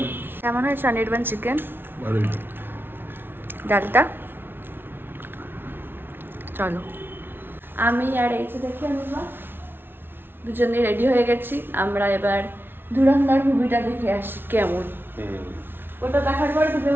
কেমন হয়েছে অনির্বাণ চিকেন? ডালটা চলো। আমি আর এই যে দেখি অনির্বাণ দুজনে রেডি হয়ে গেছি। আমরা এবার ধুরন্ধর মুভিটা দেখে আসি কেমন। ওটা দেখার পর তুমি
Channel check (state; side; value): late; left; 0.10 ms